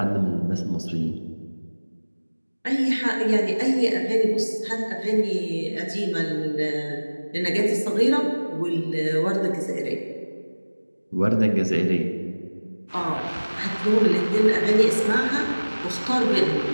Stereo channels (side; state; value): both; inverted; correlation -1.00